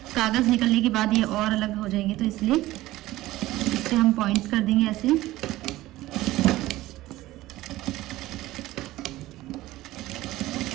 कागज़ निकलने के बाद ये और अलग हो जाएंगे, तो इसलिए इस पर हम पॉइंट कर देंगे ऐसे।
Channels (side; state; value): left; quieter; 16.9 dB